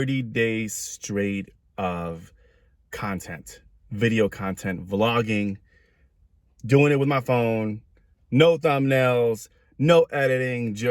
days straight of content, video content, vlogging, doing it with my phone, no thumbnails, no editing,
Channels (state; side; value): identical; both; correlation 1.00